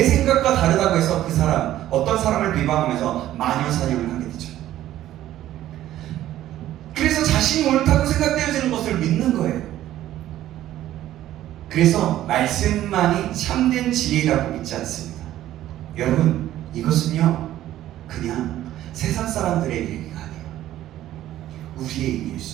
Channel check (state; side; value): quieter; left; 13.3 dB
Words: 생각과 다르다고 해서 그 사람, 어떤 사람을 비방하면서 마녀 사냥을 하게 되죠. 그래서 자신이 옳다고 생각되어지는 것을 믿는 거예요. 그래서 말씀만이 참된 진리라고 믿지 않습니다. 여러분, 이것은요 그냥 세상 사람들의 얘기가 아니에요. 우리의 얘기일